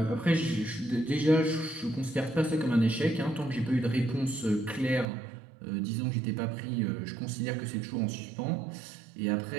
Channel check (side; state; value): left; drops out; at 5.1 s